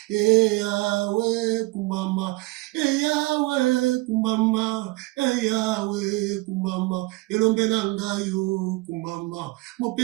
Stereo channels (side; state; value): left; quieter; 22.4 dB